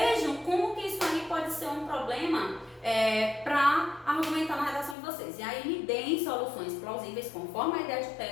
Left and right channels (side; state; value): right; drops out; at 5.0 s